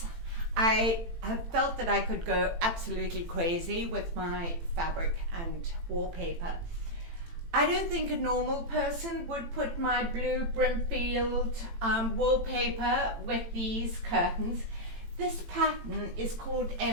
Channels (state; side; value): late; left; 18 ms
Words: I have felt that I could go absolutely crazy with my fabric and wallpaper. I don't think a normal person would put my blue Brimfield wallpaper with these curtains. This pattern is called